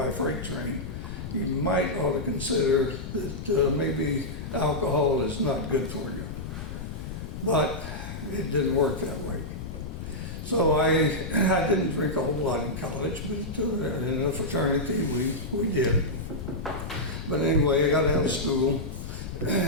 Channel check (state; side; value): noise; left; rumble, 8 dB below the sound